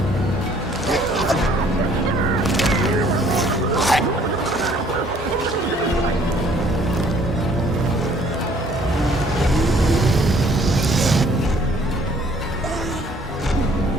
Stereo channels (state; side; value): normal; both; correlation 0.59